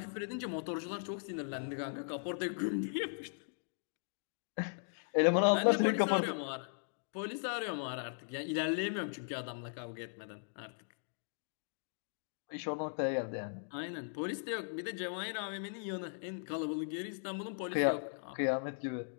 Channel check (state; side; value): silent; right; digital silence